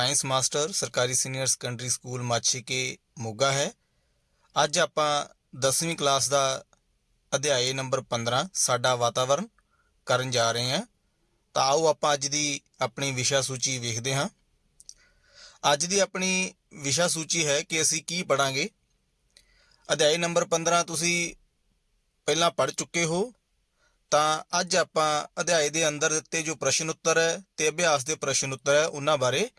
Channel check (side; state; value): both; identical; correlation 1.00